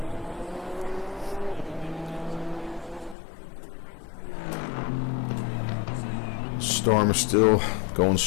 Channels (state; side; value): drops out; right; at 3.2 s